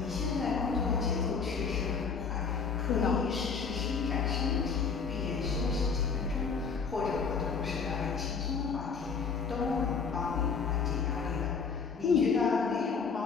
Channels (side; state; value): right; quieter; 5.5 dB